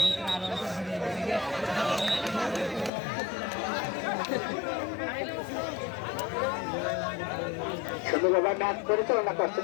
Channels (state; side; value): drops out; right; at 2.9 s